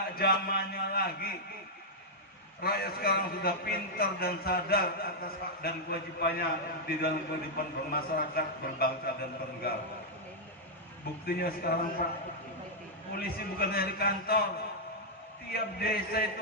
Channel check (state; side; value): normal; both; correlation -0.06